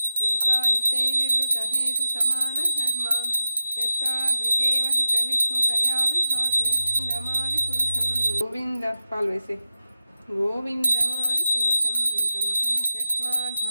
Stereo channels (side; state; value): both; inverted; correlation -0.93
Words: दीपायिते विवृतहेतुसमानधर्मा यस्तादृगेव हि च विष्णुतया विभाति गोविन्दमादिपुरुषं गोविन्द पाल्वेसे गोविन्दमादिपुरुषं तमहं